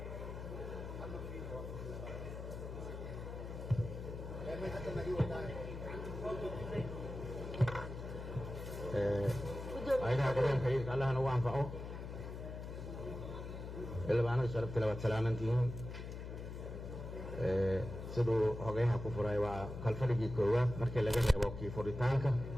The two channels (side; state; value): left; noise; hum, 8 dB below the sound